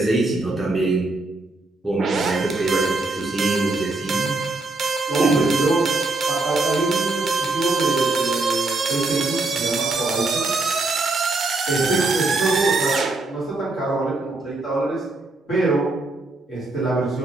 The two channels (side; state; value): left; quieter; 3.1 dB